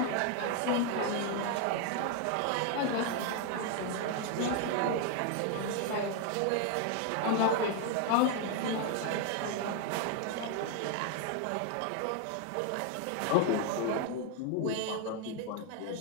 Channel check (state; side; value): different; both; correlation 0.01